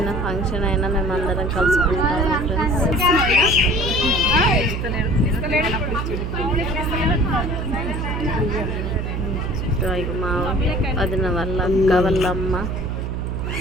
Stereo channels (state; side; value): noise; right; hum, 3 dB below the sound